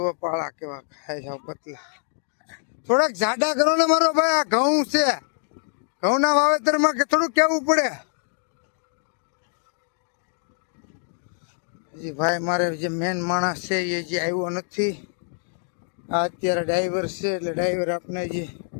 પાળા કેવા ખાય જાવ પતલા. થોડાક જાડા કરો ને મારો ભાઈ. આ ઘઉં છે, ઘઉંના વાવેતરમાં કે થોડુંક કેવું પડે. જી ભાઈ, મારે જે મેન માણસ છે એ જે આવ્યો નથી. આ અત્યારે ડ્રાઈવર છે, એટલે ડ્રાઈવર આપણે જે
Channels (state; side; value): silent; right; 62 dB below the other